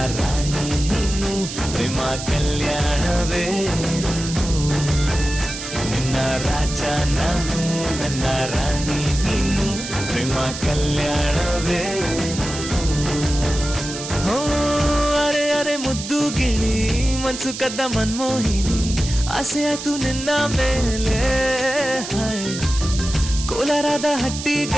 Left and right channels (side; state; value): right; noise; hiss, 8 dB below the sound